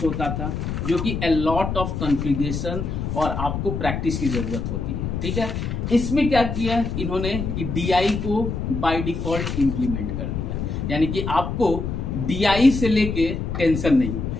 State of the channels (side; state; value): left; noise; rumble, 3 dB below the sound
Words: था, जो कि a lot of कॉन्फ़िगरेशन और आपको प्रैक्टिस की जरूरत होती है। ठीक है, इसमें क्या किया इन्होंने कि DI को बाय डिफॉल्ट इंप्लीमेंट कर दिया, यानी कि आपको DI से लेके टेंशन नहीं।